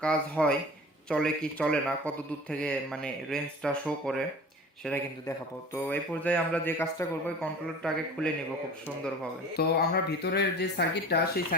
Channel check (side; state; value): both; normal; correlation 0.39